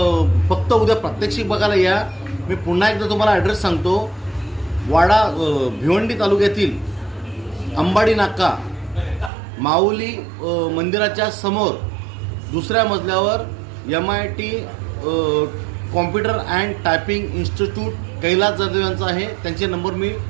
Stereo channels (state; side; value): drops out; left; at 9.3 s